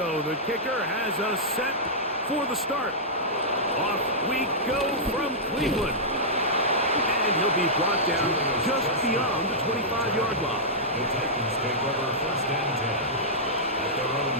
The kicker has us set for the start. Off we go from Cleveland. And he'll be brought down just beyond the 25-yard line. The Titans take over first and 10 at their own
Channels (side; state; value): both; normal; correlation -0.12